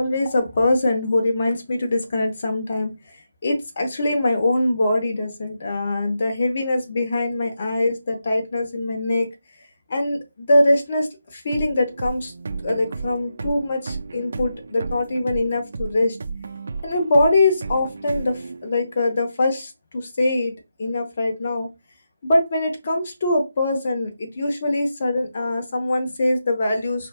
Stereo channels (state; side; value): inverted; both; correlation -0.87